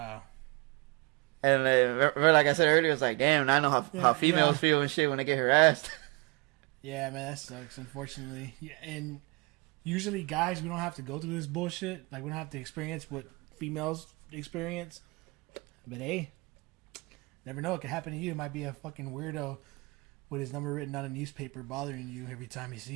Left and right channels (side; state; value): left; quieter; 27.8 dB